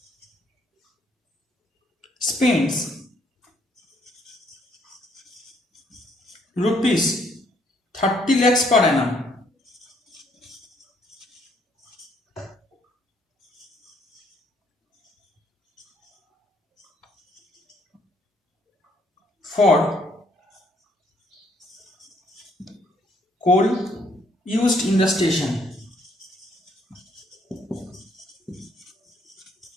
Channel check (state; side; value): normal; both; correlation 0.68